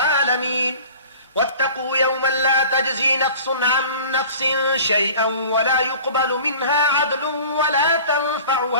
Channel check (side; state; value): both; inverted; correlation -0.43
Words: واتقوا يوما لا تجزي نفس عن نفس شيئا ولا يقبل منها عدل ولا